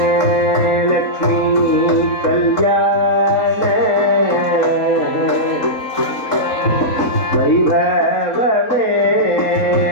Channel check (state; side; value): late; right; 4.1 ms